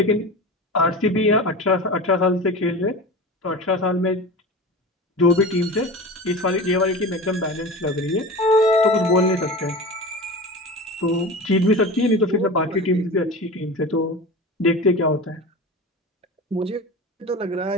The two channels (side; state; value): both; normal; correlation 0.31